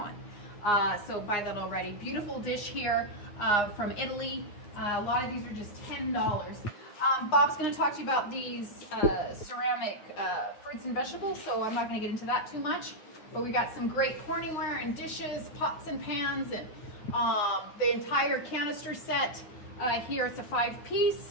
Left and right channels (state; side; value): late; right; 9.6 ms